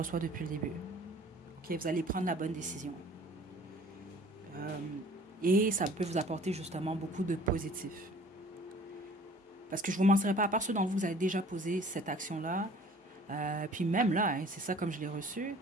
depuis le début. Ok, vous allez prendre la bonne décision. Et ça peut vous apporter justement beaucoup de positif. Parce que je ne vous mentirai pas, à part ceux d'entre vous, vous avez déjà posé cette action-là. Puis même là, hein, c'est ça comme je l'ai reçu.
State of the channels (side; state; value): both; normal; correlation 0.50